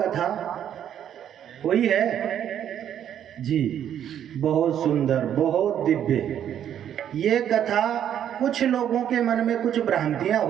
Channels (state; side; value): quieter; left; 9.9 dB